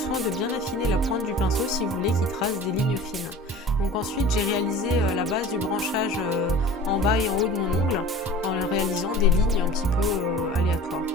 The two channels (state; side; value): normal; both; correlation 0.41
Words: de bien affiner la pointe du pinceau si vous voulez qu'il trace des lignes fines. Donc ensuite j'ai réalisé la base du branchage en bas et en haut de mon ongle en réalisant des lignes un petit peu aléatoires.